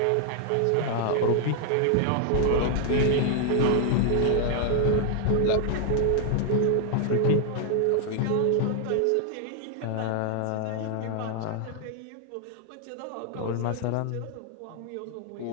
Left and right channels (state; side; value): different; both; correlation 0.00